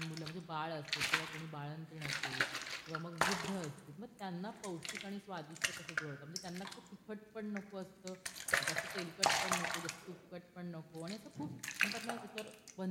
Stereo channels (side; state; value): both; identical; correlation 1.00